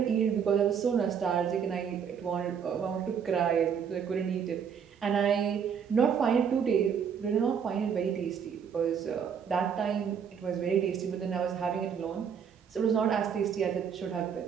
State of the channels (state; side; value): quieter; left; 7.3 dB